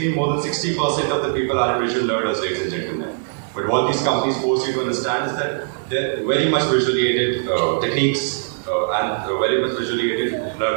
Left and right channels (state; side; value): silent; left; digital silence